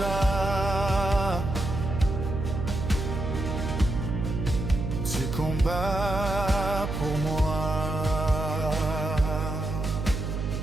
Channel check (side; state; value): right; noise; hum, 3 dB below the sound